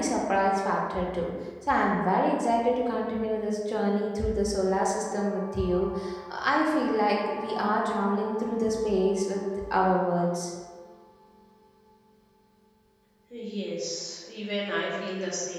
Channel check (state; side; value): identical; both; correlation 1.00